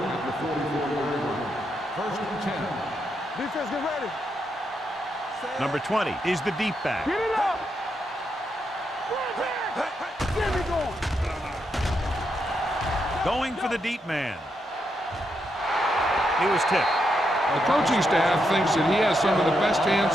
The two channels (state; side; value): normal; both; correlation 0.82